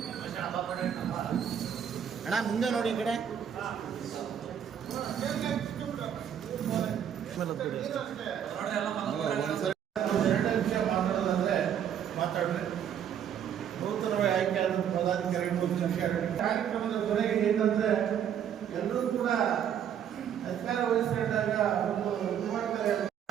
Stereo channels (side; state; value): left; quieter; 9.0 dB